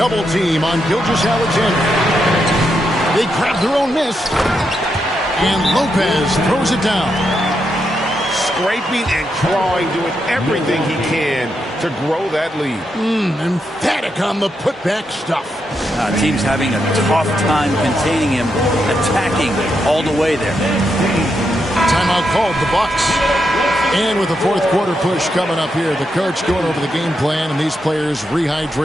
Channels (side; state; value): both; normal; correlation 0.82